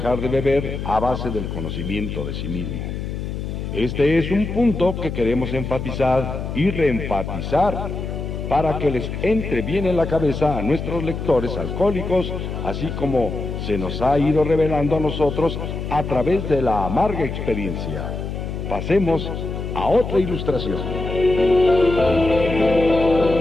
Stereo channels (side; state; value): left; noise; hum, 5 dB below the sound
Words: de beber a base del conocimiento de sí mismo. Este es un punto que queremos enfatizar y reenfatizar para que les entre bien en la cabeza a nuestros lectores alcohólicos, así como se nos ha ido revelando a nosotros a través de la amarga experiencia. Pasemos a otra ilustración.